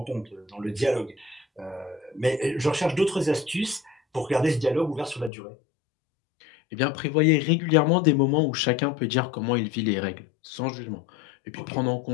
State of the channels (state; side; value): drops out; right; at 5.3 s